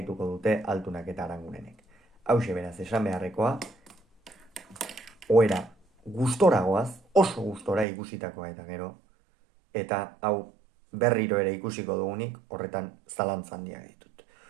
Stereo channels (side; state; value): left; drops out; at 7.9 s